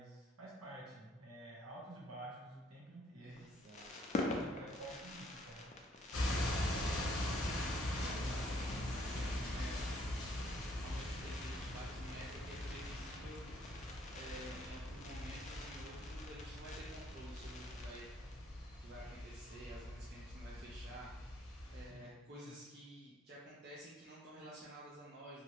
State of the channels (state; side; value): normal; both; correlation 0.66